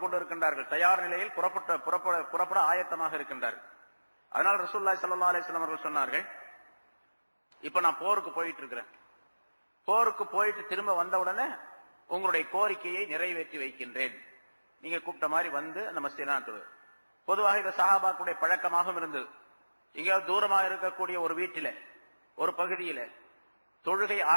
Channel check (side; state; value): both; inverted; correlation -1.00